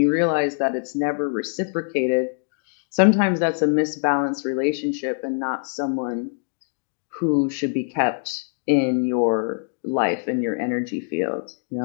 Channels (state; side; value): silent; right; 63 dB below the other